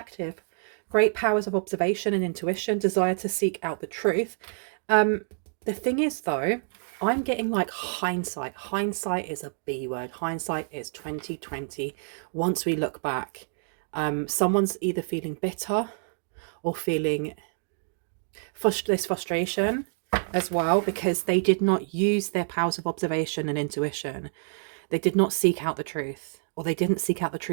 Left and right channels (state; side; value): silent; left; digital silence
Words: Great powers of observation and intuition, desire to seek out the truth. The thing is, though, I'm getting like hindsight. Hindsight is a B word. Hindsight is 2020. Once we look back, someone's either feeling bitter or feeling this frustration as well, because they did not use their powers of observation and intuition. They did not seek out the truth, or they didn't seek out the